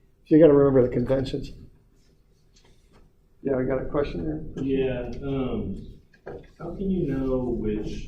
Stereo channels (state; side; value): identical; both; correlation 1.00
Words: So you got to remember the conventions. Yeah, we got a question there? Yeah, how can you know which